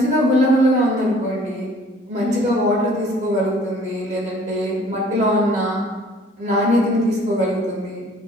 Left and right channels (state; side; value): normal; both; correlation 0.54